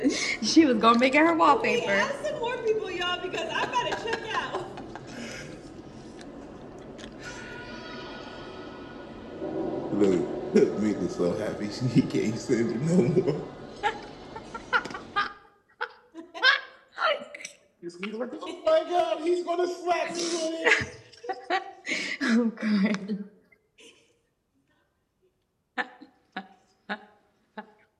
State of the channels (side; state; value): both; identical; correlation 1.00